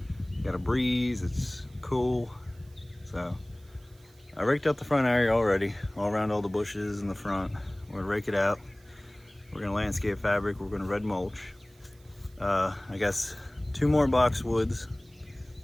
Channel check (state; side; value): noise; right; hiss, 30 dB below the sound